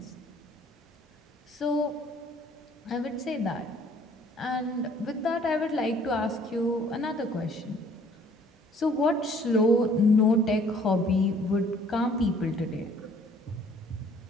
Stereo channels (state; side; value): normal; both; correlation 0.58